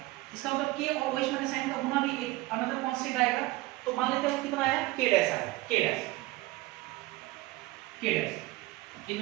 इसका मतलब K और OH माइनस साइन का गुना भी एक अनदर कांस्टेंट आएगा, तो मान लेते हैं कितना आया, K डैश आया, K डैश इन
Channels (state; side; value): quieter; left; 19.7 dB